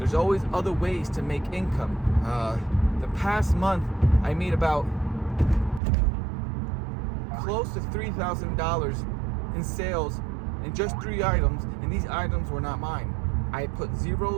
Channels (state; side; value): drops out; left; at 5.8 s